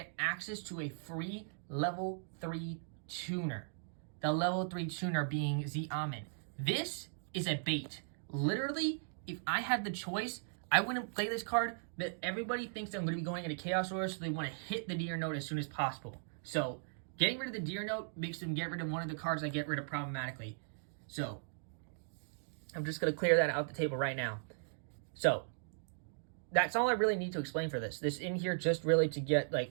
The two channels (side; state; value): left; silent; digital silence